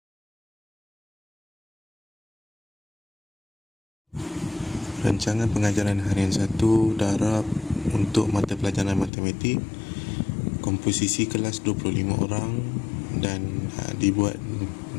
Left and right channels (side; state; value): right; drops out; at 9.1 s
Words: Rancangan pengajaran harian 1 darab untuk mata pelajaran matematik, komposisi kelas 25 orang dan dibuat